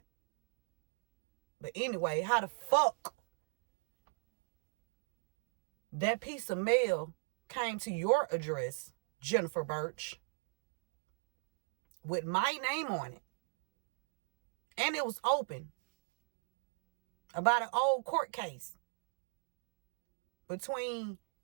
But anyway, how the fuck that piece of mail came to your address, Jennifer Birch, with my name on it? And it was open about an old court case between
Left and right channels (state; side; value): silent; left; digital silence